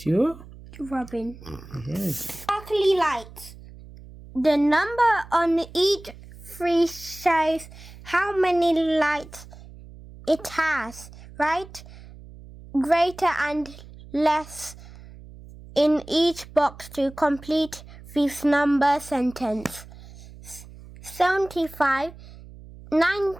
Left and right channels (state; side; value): noise; right; hum, 18 dB below the sound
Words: your robin. Yes. Sparkly lights. The number on each tree shows how many lights it has, right? Greater and less in each box to complete this number sentence. 75,